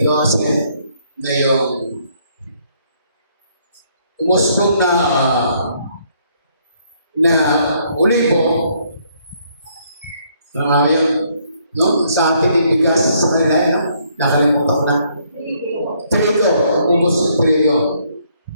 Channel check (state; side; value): inverted; both; correlation -0.68